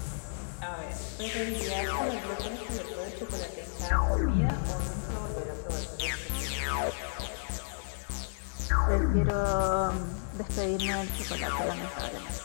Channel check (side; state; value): right; silent; digital silence